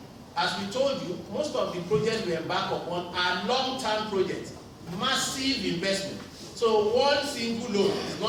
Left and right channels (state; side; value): identical; both; correlation 1.00